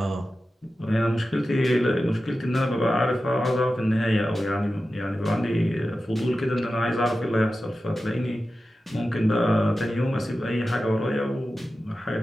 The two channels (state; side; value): normal; both; correlation 0.93